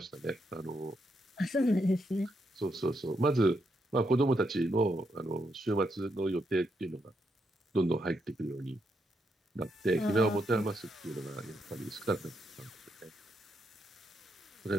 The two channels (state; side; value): normal; both; correlation 0.80